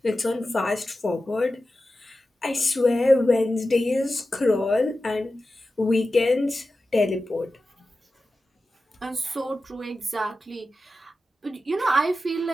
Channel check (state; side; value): normal; both; correlation 0.93